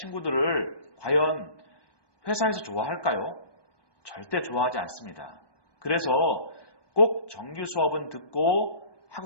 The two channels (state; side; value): late; right; 1.2 ms